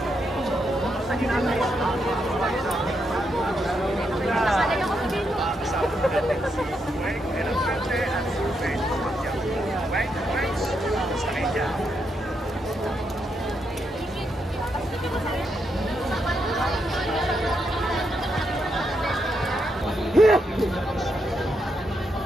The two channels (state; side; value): normal; both; correlation 0.81